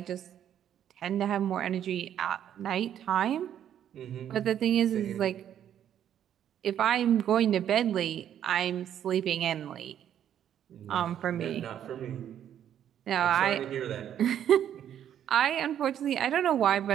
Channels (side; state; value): left; quieter; 10.1 dB